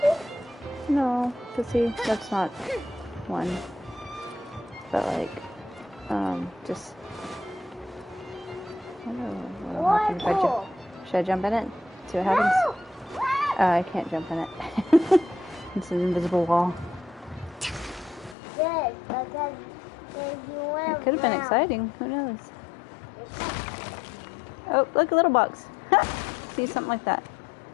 no, but see, that's not one. But like, just. I don't know what happens if I jump. Should I jump in it? See what happens? I can't jump in it. It's an invisible wall. Good, because you went It could have been exciting. Who knows? Oh, look, a little box. See, something like that.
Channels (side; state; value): right; drops out; at 18.4 s